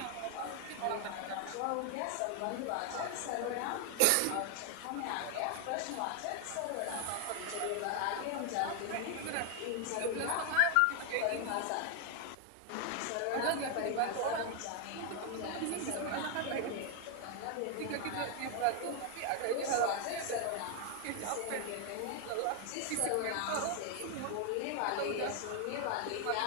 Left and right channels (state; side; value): different; both; correlation 0.00